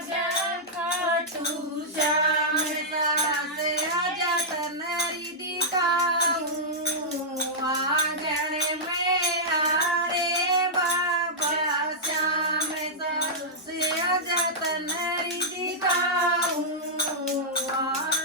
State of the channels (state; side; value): normal; both; correlation -0.10